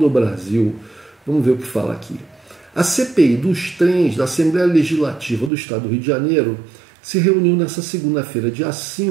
Brasil. Vamos ver o que fala aqui. A CPI dos trens da Assembleia Legislativa do Estado do Rio de Janeiro se reuniu nesta segunda-feira, dia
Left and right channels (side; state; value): left; drops out; at 5.5 s